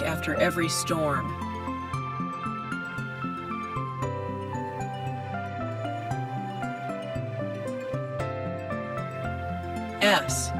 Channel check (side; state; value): both; identical; correlation 1.00